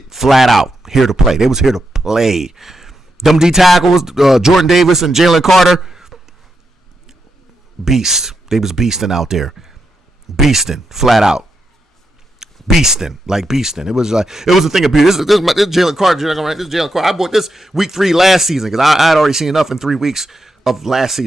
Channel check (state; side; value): normal; both; correlation 0.85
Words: Flat out here to play. They was here to play. Them D tackles, Jordan Davis and Jalen Carter, beast. They was beasting out there, beasting flat out, beasting. It was a thing of beauty. This is Jalen Carter. This is Jalen Carter. I bought this week 3 last season because I had already seen enough in 3 weeks of last